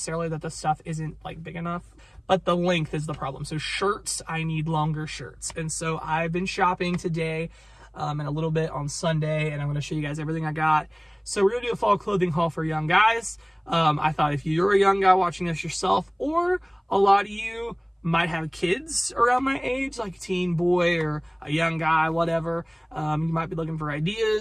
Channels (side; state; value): both; identical; correlation 1.00